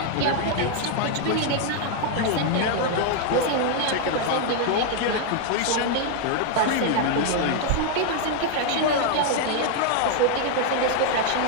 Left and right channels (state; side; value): different; both; correlation 0.00